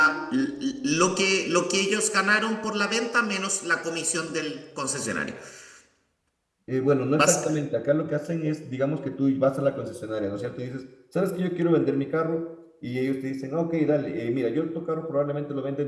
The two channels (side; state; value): both; identical; correlation 1.00